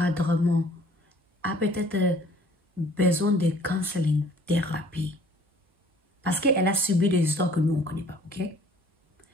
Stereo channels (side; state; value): both; normal; correlation 0.55